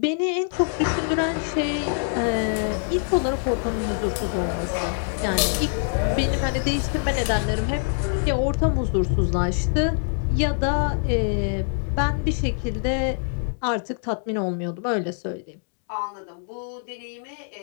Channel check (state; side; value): silent; right; 62 dB below the other